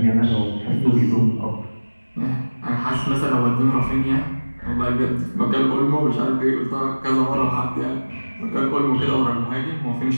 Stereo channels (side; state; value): both; inverted; correlation -1.00